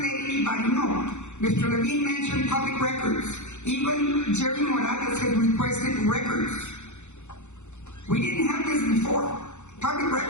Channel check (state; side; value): late; right; 0.83 ms